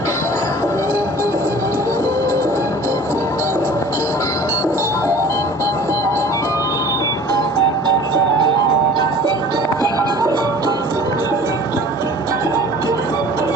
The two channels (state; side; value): normal; both; correlation 0.45